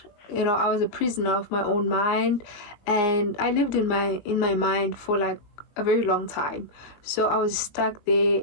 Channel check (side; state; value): right; late; 19 ms